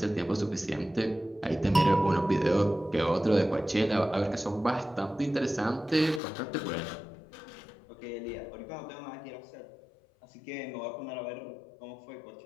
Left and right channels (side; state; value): right; drops out; at 6.2 s